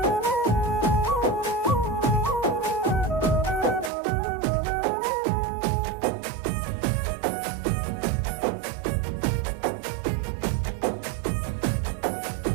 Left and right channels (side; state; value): left; drops out; at 3.9 s